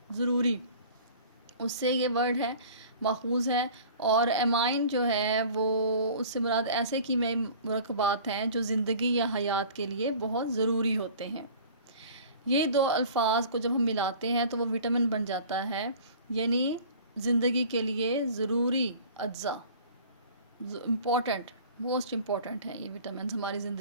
ضروری، اس سے یہ ورڈ ہے ماخوذ ہے، اور ایمائن جو ہے وہ اس سے مراد ایسے کیمیائی مرکبات ہیں جو زندگی یا حیات کے لیے بہت ضروری ہوتے ہیں۔ یہ دو الفاظ کو جب ہم ملاتے ہیں تو وہ وٹامن بن جاتا ہے، یعنی زندگی کے لیے ضروری اجزاء، امپورٹنٹ، موسٹ امپورٹنٹ ہیں یہ وٹامنز ہماری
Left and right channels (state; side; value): inverted; both; correlation -0.44